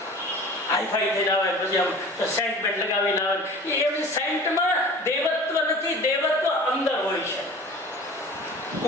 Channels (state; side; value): normal; both; correlation 0.41